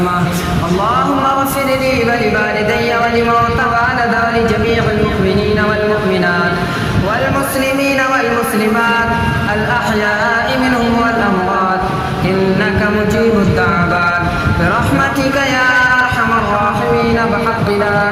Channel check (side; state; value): both; identical; correlation 1.00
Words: اللهم اغفر لي ولوالدي ولموتى والد ولجميع المؤمنين والمؤمنات والمسلمين والمسلمات الأحياء منهم والأموات إنك مجيب الدعوات برحمتك يا أرحم الراحمين بحق لا